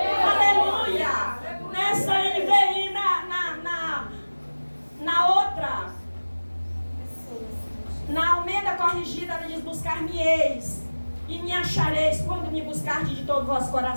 Aleluia. Nessa NVI, na outra, na Almeida Corrigida, ele diz: buscar-me-eis e me achareis quando me buscardes de todo o vosso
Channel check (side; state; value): both; inverted; correlation -1.00